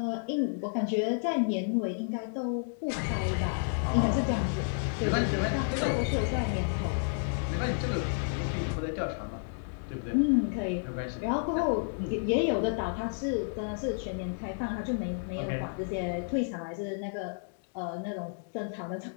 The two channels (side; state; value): right; silent; digital silence